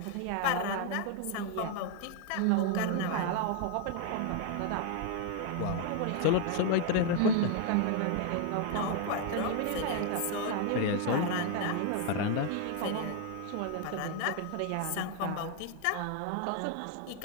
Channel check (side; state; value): both; different; correlation 0.01